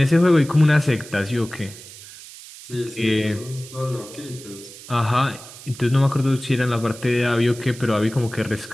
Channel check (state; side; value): noise; right; hiss, 17 dB below the sound